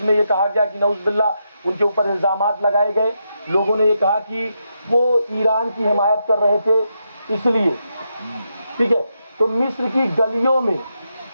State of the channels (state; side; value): inverted; both; correlation -0.83